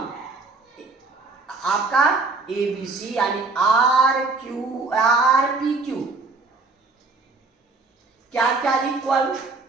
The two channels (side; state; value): left; quieter; 3.8 dB